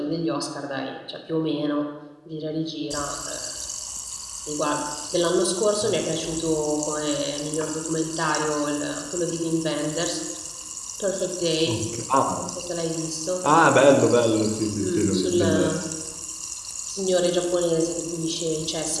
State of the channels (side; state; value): both; identical; correlation 1.00